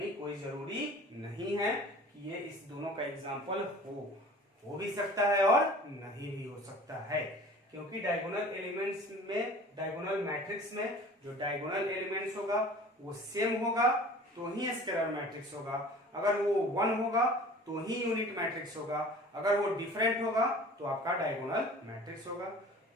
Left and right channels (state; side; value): normal; both; correlation 0.44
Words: कोई जरूरी नहीं है कि ये इस दोनों का एग्जांपल हो भी सकता है और नहीं भी हो सकता है, क्योंकि डायगोनल एलिमेंट्स में, डायगोनल मैट्रिक्स में जो डायगोनल एलिमेंट्स होगा वो सेम होगा तो ही स्केलर मैट्रिक्स होगा, अगर वो 1 होगा तो ही यूनिट मैट्रिक्स होगा, अगर वो डिफरेंट होगा तो आपका डायगोनल मैट्रिक्स होगा।